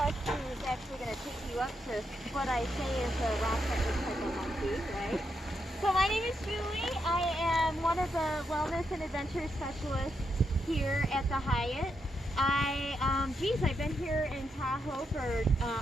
who's actually going to take you up to what I say is a rock that looks like a monkey, right? So my name is Julie. I am one of the wellness and adventure specialists here at the Hyatt. I've been here in Tahoe for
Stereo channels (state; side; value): normal; both; correlation 0.82